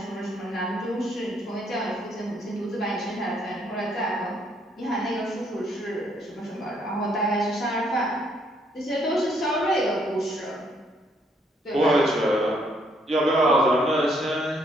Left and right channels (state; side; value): normal; both; correlation 0.69